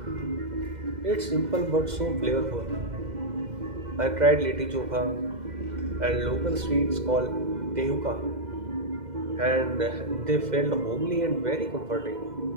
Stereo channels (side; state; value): left; late; 2.0 ms